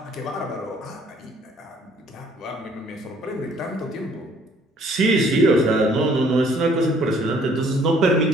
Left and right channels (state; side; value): normal; both; correlation 0.60